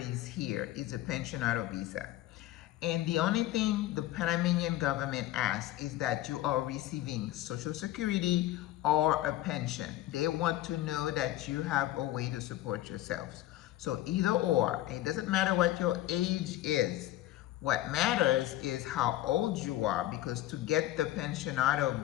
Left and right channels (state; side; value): quieter; right; 14.7 dB